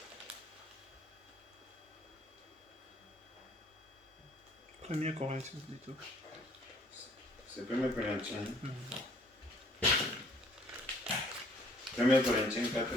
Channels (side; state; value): both; normal; correlation 0.59